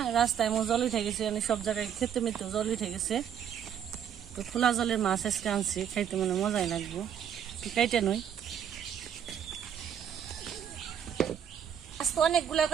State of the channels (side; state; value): left; quieter; 8.9 dB